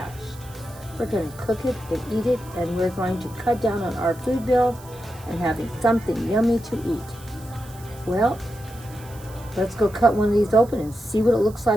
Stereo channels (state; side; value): noise; right; hiss, 22 dB below the sound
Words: We're going to cook it and eat it, and we're going to cut down on our food bill and having something yummy to eat. Well, let's go cut one of these open and see what it looks